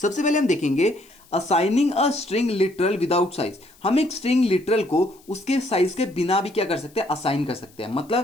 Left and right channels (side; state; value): left; noise; hiss, 28 dB below the sound